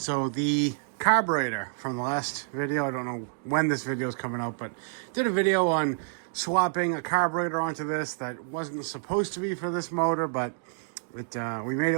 the carburetor from the last video, I don't know when this video is coming out, but did a video on swapping a carburetor onto this that wasn't supposed to be for this motor, but we made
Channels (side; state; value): left; silent; digital silence